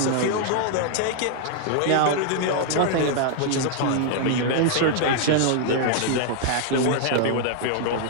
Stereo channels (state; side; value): different; both; correlation -0.01